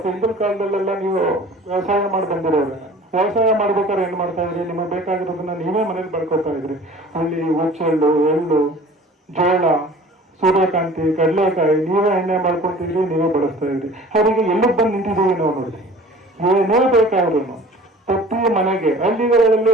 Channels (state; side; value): normal; both; correlation 0.45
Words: ಹಿಂದಿನ ಕಾಲದಲ್ಲೆಲ್ಲ ನೀವು ವ್ಯವಸಾಯ ಮಾಡಿ ಬಂದಿರೋರು, ವ್ಯವಸಾಯ ಮಾಡ್ಬೇಕಾದ್ರೆ ಏನ್ ಮಾಡ್ತಾ ಇದ್ರಿ, ನಿಮಗೆ ಬೇಕಾಗಿರೋದನ್ನ ನೀವೇ ಮನೇಲಿ ಬೆಳ್ಕೊತಾ ಇದ್ರಿ. ಹುಳ್ಳಿ, ಹುಚ್ಚೆಳ್ಳು, ಎಳ್ಳು, ಜೋಳ, ಸೂರ್ಯಕಾಂತಿ, ಕಡಲೆಕಾಯಿ ನೀವೇ ಎಣ್ಣೆ ಮಾಡ್ಕೊತಿದ್ರಿ, ನೀವೇ ಬಳಸ್ತಾ ಇದ್ರಿ. ಅವರಿಗೆ ಎಲ್ಲಿಗೆ ಬಂದು ನಿಂತಿದ್ದೀವಿ ನಾವು ನೋಡಿ. ಏನೇ ಬೇಕಾದ್ರೂ ಪ್ರತಿ ಮನೆಗೆ ಹಳ್ಳಿಗಳಲ್ಲಿ